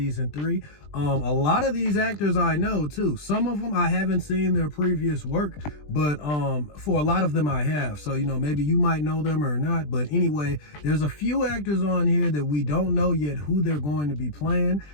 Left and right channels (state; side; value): late; right; 20 ms